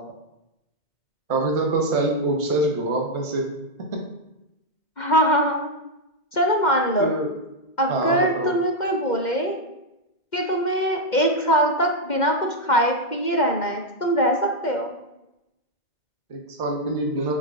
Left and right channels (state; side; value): late; right; 2.1 ms